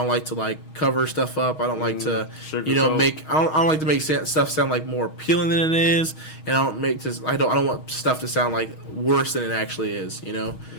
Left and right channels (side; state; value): right; late; 6.4 ms